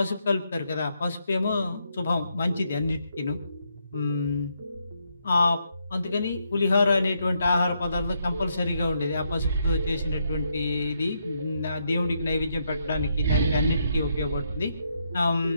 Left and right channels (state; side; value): inverted; both; correlation -0.78